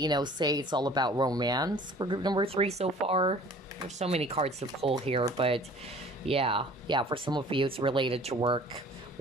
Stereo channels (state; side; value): normal; both; correlation 0.49